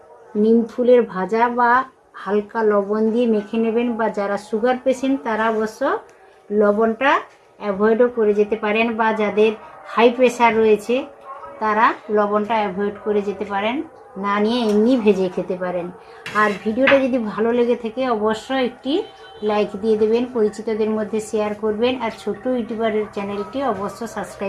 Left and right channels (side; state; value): both; identical; correlation 1.00